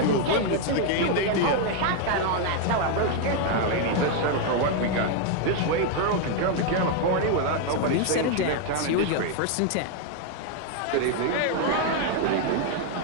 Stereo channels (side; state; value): both; different; correlation 0.01